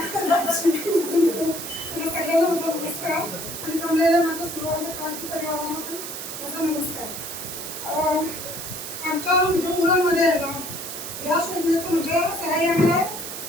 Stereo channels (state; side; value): noise; right; hiss, 8 dB below the sound